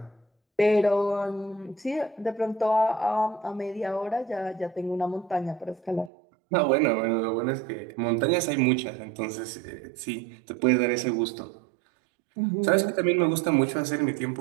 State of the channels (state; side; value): drops out; left; at 6.1 s